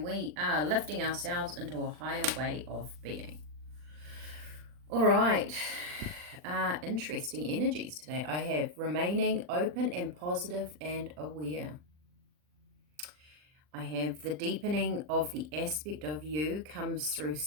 we are lifting ourselves into a higher way of being. Alright, interesting energies today. I have remaining open and positive and aware. I have the deepening of the aspect of you comes through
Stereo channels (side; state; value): left; late; 39 ms